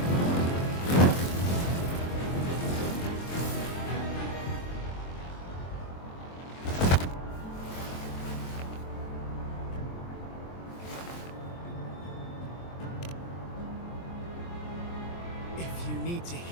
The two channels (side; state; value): right; late; 23 ms